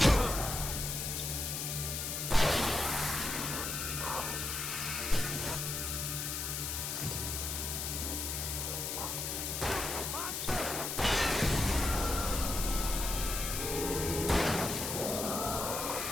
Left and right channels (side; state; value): left; noise; hiss, 2 dB below the sound